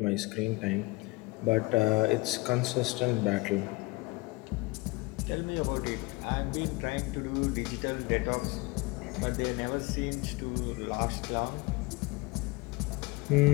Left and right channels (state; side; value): quieter; right; 23.7 dB